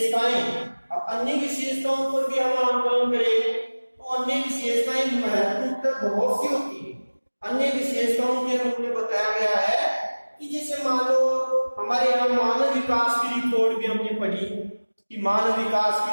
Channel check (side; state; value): both; inverted; correlation -1.00